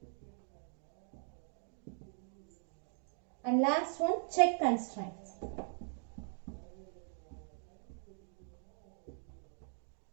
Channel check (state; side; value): silent; left; 51 dB below the other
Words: and last one check constraints.